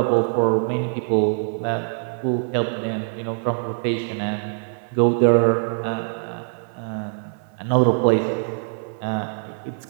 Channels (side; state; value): left; silent; 56 dB below the other